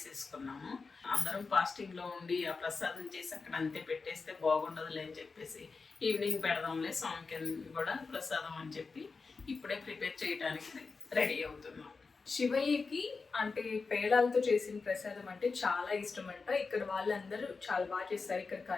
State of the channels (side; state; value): right; quieter; 4.5 dB